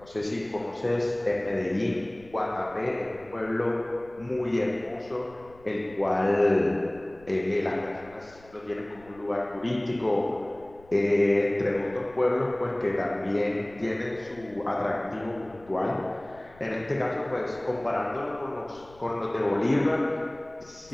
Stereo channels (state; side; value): noise; left; rumble, 25 dB below the sound